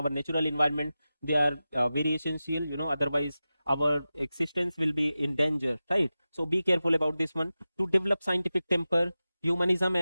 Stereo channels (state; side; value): inverted; both; correlation -0.94